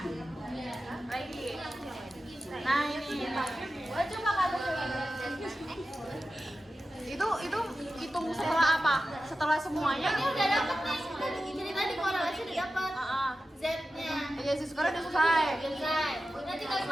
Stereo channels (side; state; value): both; normal; correlation 0.93